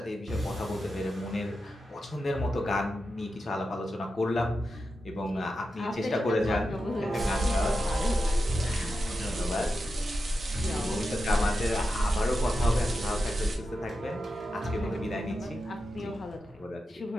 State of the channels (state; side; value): normal; both; correlation 0.90